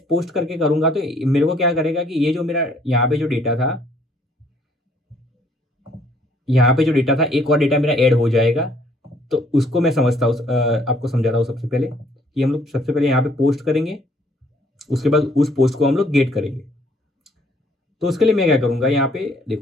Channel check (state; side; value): normal; both; correlation 0.63